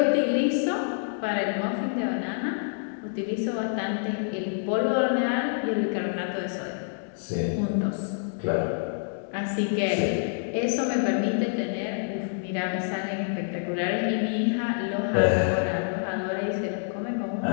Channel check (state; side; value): silent; right; digital silence